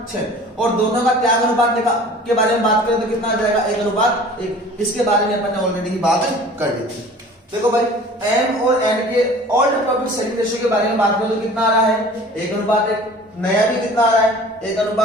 और दोनों का त्याग अनुपात के बारे में बात करें तो कितना आ जाएगा 1:1। इसके बारे में अपन ने ऑलरेडी ही बात कर ली थी। देखो भाई एम और एन के ओल्ड प्रॉफिट शेयरिंग रेशियो के बारे में बात करें तो कितना आ रहा है 1:1। नया भी कितना आ रहा है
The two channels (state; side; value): normal; both; correlation 0.45